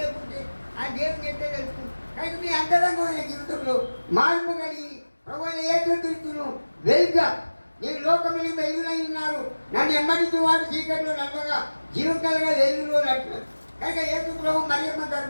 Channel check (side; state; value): both; inverted; correlation -1.00